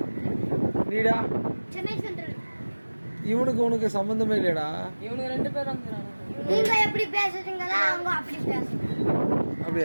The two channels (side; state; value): both; inverted; correlation -1.00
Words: நீடா? இவனுக்கு உனக்கு சம்பந்தமே இல்லையடா. இவனுக்கு 2 பேர் வந்துறாங்க. நீங்க எப்படி பேசுறீங்களா அவங்க அப்படி பேசுறாங்க.